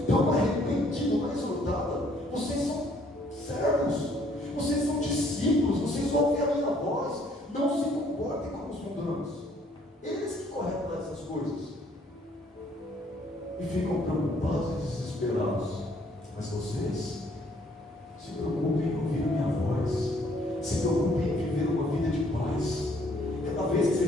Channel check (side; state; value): both; normal; correlation 0.64